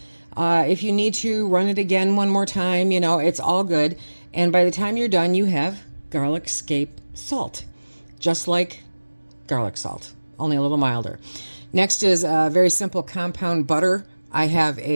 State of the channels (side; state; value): both; inverted; correlation -1.00